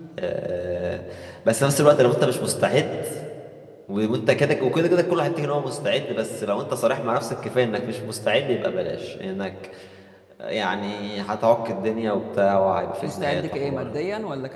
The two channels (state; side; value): identical; both; correlation 1.00